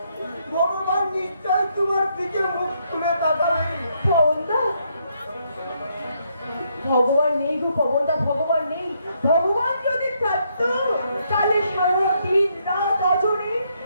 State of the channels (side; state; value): both; inverted; correlation -0.75